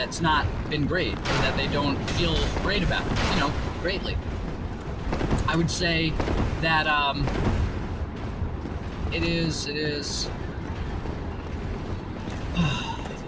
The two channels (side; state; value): both; identical; correlation 1.00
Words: not been great or that they don't feel great about, greatly. I would say that it is